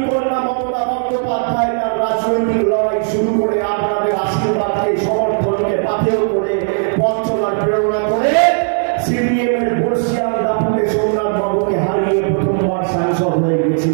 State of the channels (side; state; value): left; silent; 60 dB below the other